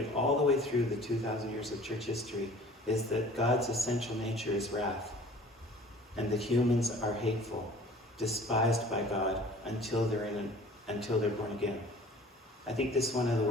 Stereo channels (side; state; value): both; normal; correlation 0.48